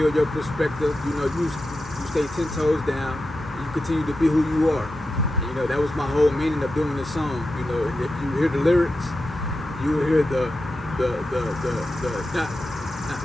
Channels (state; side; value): normal; both; correlation 0.90